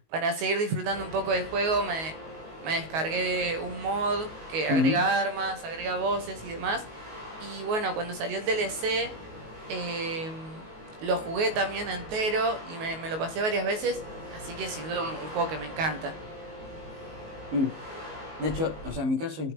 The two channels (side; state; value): left; late; 19 ms